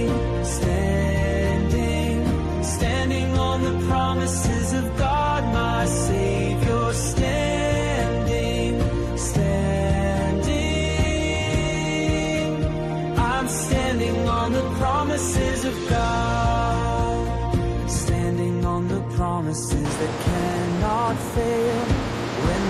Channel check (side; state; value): both; identical; correlation 1.00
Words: standing, standing on the promises of God my Savior. Standing, standing, I'm standing on the promises of God. Standing on the promises that cannot fail. When